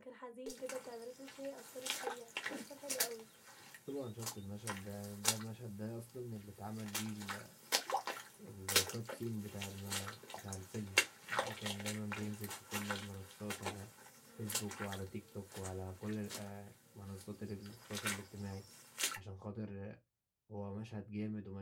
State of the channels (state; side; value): identical; both; correlation 1.00